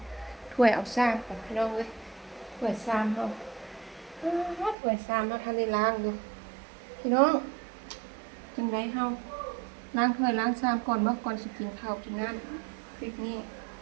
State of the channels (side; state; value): left; drops out; at 4.8 s